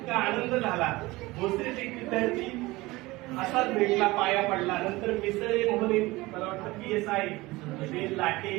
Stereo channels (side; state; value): left; quieter; 20.7 dB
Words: आनंद झाला. भोसरीत एक विद्यार्थी असाच भेटला, पाया पडला. नंतर मिसळे म्हणून मला वाटतं PSI लाटे